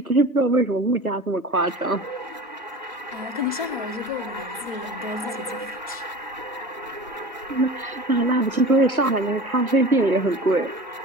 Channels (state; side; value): normal; both; correlation 0.36